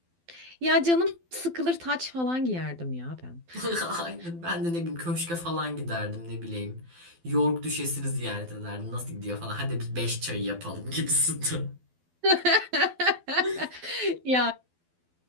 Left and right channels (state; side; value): late; left; 12 ms